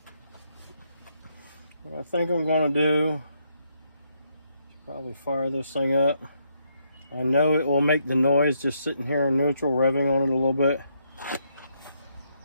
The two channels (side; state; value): both; inverted; correlation -0.75